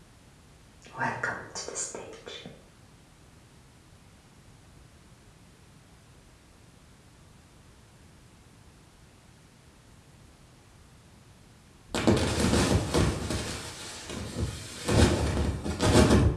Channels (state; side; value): identical; both; correlation 1.00